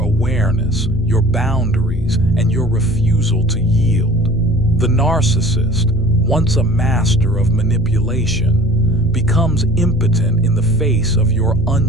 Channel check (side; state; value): both; normal; correlation 0.47